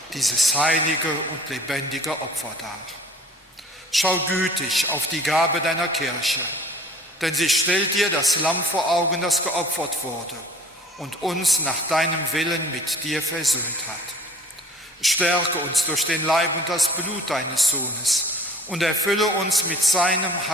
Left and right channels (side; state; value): both; normal; correlation 0.49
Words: dieses heilige und lebendige Opfer dar. Schau gütig auf die Gabe deiner Kirche, denn sie stellt dir das Lamm vor Augen, das geopfert wurde und uns nach deinem Willen mit dir versöhnt hat. Stärke uns durch den Leib und das Blut deines Sohnes und erfülle uns mit seinem